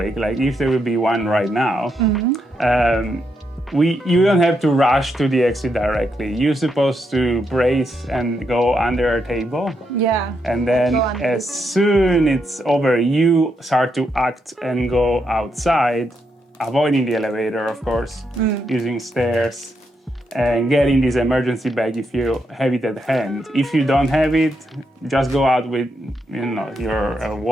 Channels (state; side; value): normal; both; correlation 0.81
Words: like if there will be one right now, you don't have to rush to the exit directly. You're supposed to brace and go under a table. Yeah. And then Go under as soon it's over, you start to act and go outside, avoiding the elevator, of course, using stairs, and getting this emergency bag if you have it at hand. If you don't have it, just go out with your